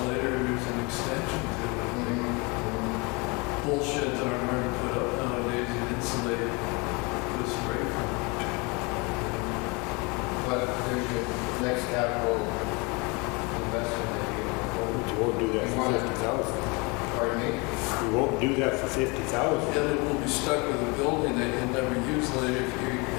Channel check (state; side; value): quieter; right; 28.6 dB